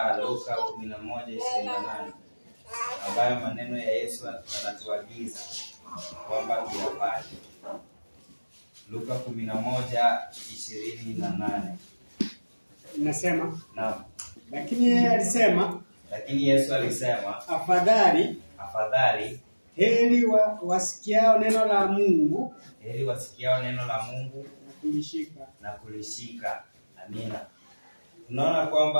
Luka 11:28 ambayo maneno ya Yesu anatuagiza kwamba tuyafanye. Luka 11:28 Inasema, naam. Lakini Yesu alisema, afadhali heri wasikiao neno la Mungu, na kulishika. Amina. Tunaona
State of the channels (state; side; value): inverted; both; correlation -1.00